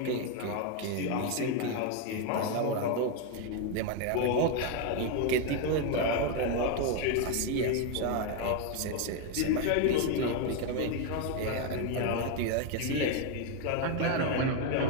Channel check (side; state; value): both; different; correlation 0.01